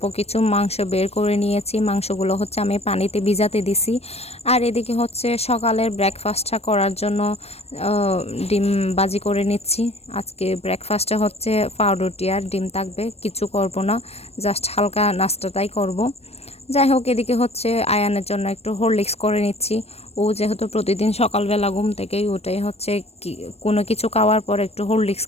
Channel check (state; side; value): late; right; 0.30 ms